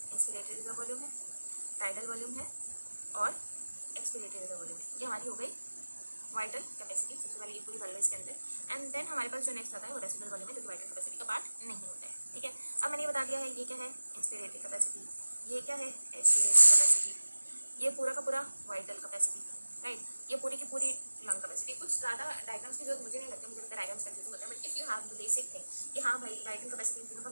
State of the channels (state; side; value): inverted; both; correlation -1.00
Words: रिजर्व वॉल्यूम है, टाइडल वॉल्यूम है और एक्सपिरेटरी रिजर्व वॉल्यूम है। ये हमारी हो गई वाइटल कैपेसिटी। सबसे पहले ये पूरी कर लो इसके अंदर, एंड देन हमारे पास जो नेक्स्ट आता है वो रेसिडुअल वॉल्यूम है जो कि वाइटल कैपेसिटी का पार्ट नहीं होता है। ठीक है, अब मैंने ये बता दिया है ये क्या है इंस्पिरेटरी कैपेसिटी, ये क्या है एक्सपिरेटरी कैपेसिटी, ये पूरा का पूरा वाइटल कैपेसिटी, राइट, ये पूरी की पूरी लंग कैपेसिटी। कुछ ज़्यादा डायग्राम्स की जरूरत मुझे नहीं लगती, मुझे लगता है डायग्राम्स कंफ्यूज होता है, but if you have the basic thing कि हाँ भाई वाइटल कैपेसिटी इन तीनों का